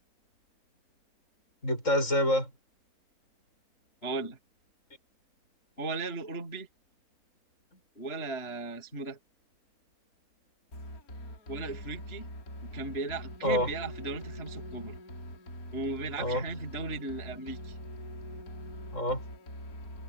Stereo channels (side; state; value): right; late; 3.7 ms